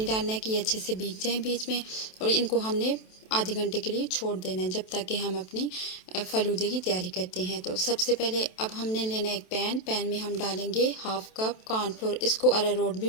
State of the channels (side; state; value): right; late; 27 ms